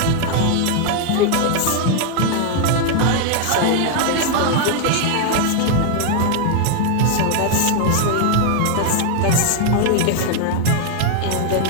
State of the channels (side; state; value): both; different; correlation 0.00